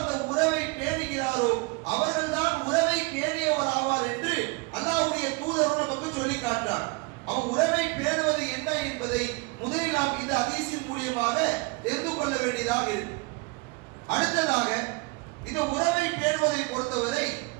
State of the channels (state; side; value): quieter; left; 26.5 dB